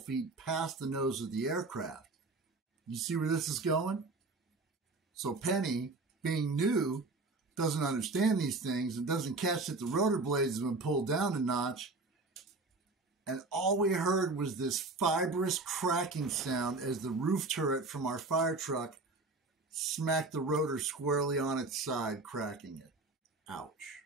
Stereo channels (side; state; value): left; quieter; 3.4 dB